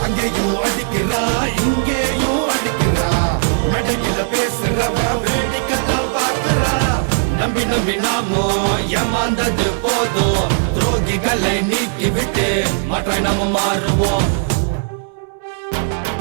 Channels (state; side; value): silent; left; 65 dB below the other